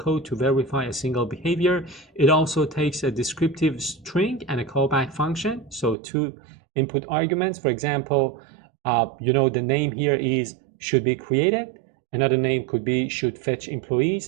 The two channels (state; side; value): drops out; left; at 6.0 s